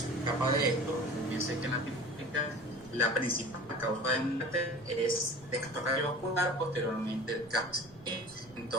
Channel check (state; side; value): noise; right; rumble, 25 dB below the sound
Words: escapa de esto. Fíjense que en Latinoamérica la principal causa de muerte es de causa cardiovascular, posteriormente el cáncer.